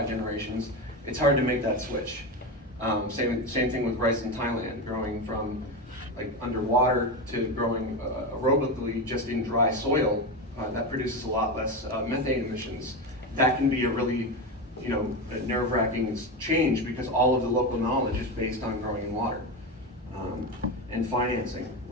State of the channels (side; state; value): both; normal; correlation 0.17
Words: generations, it's hard to make that switch. Same thing with rice in Thailand, growing from like underwater to growing aerobically just in dry soil. That produces a lot less methane emissions. That can be a really, you know, a nerve-wracking change because all of the local knowledge is based on growing in water. And financing,